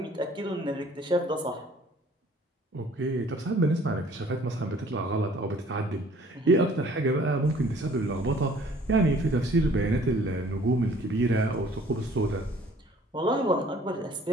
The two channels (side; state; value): both; normal; correlation 0.55